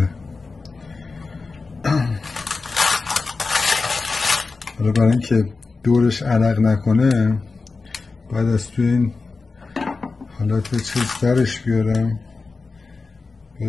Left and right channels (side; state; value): right; quieter; 4.0 dB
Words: حالا برای اینکه دورش عرق نکنه باید از توی این حالت چیز درش بیارم،